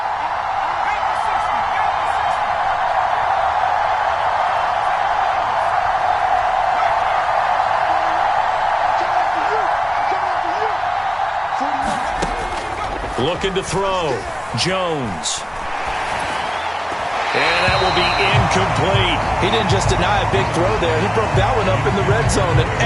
Looking to throw. Jones. And that will be incomplete. He didn't just deny a big throw there. He broke that one up in the red zone. An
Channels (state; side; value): identical; both; correlation 1.00